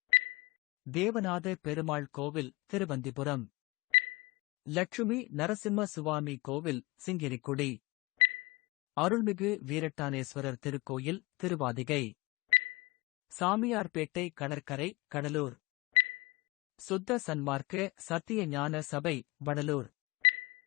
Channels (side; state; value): right; quieter; 22.4 dB